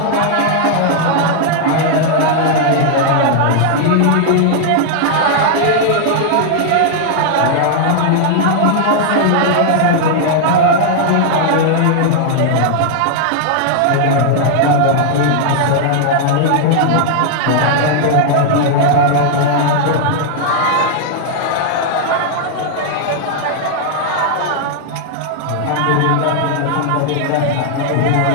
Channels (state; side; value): different; both; correlation -0.01